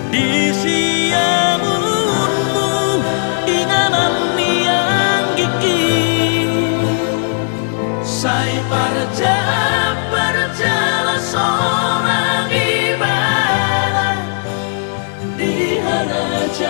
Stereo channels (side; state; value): right; silent; digital silence